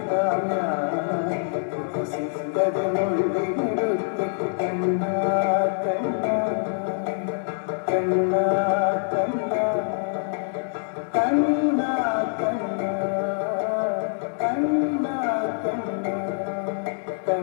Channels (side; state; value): right; silent; 62 dB below the other